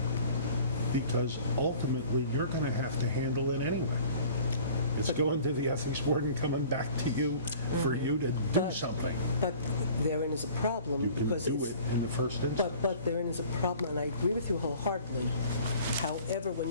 because ultimately you're going to have to handle it anyway. It's going to the ethics board and coming back to you for you to do something. But therein is a problem because do it in the first instance. But therein is a problem, and I agree with you wholeheartedly. However, when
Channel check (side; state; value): both; inverted; correlation -0.48